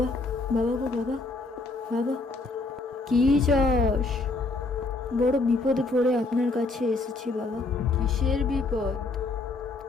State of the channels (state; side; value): quieter; right; 3.4 dB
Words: বাবা গো বাবা, বাবা। কি চাস? বড় বিপদে পড়ে আপনার কাছে এসেছি বাবা। কিসের বিপদ?